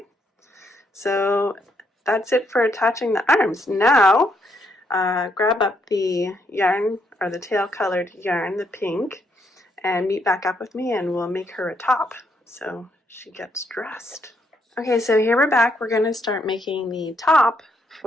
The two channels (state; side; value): normal; both; correlation 0.75